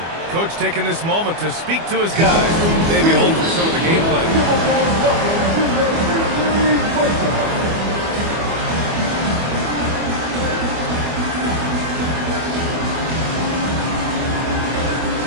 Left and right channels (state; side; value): late; left; 24 ms